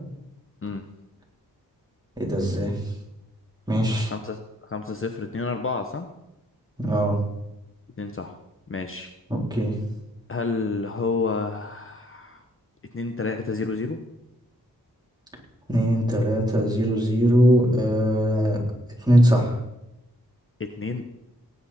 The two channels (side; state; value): both; normal; correlation 0.72